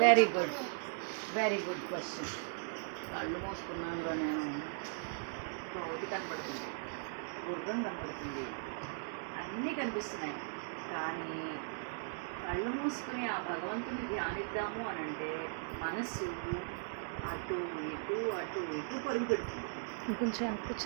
very good very good question. కళ్ళు మూసుకున్నాను నేను, కోతి కనపడుతుంది, గుర్రం కనపడుతుంది, అన్నీ కనిపిస్తున్నాయి. కానీ కళ్ళు మూసుకుని ఆ భగవంతుని ధ్యానిద్దాము అని అంటే మనస్సు అటు ఇటు అటు ఇటు పరుగు పెడుతుంది.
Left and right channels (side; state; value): left; silent; digital silence